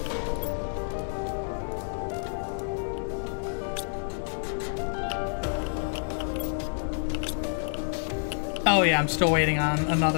Oh yeah, I'm still waiting on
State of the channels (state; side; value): silent; right; digital silence